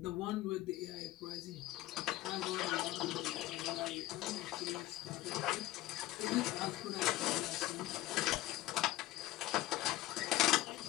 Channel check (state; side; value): quieter; right; 16.6 dB